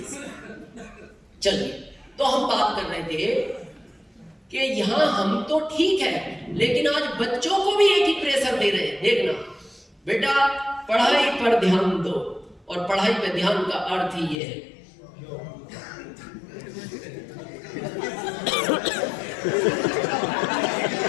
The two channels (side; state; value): right; drops out; at 14.4 s